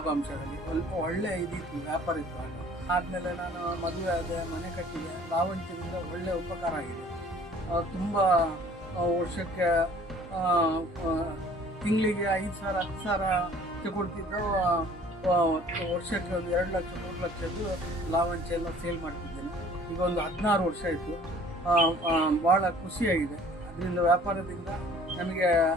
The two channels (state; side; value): normal; both; correlation 0.52